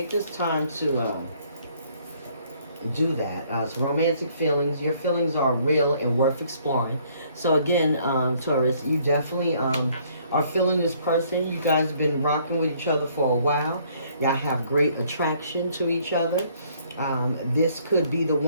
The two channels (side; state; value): both; inverted; correlation -0.63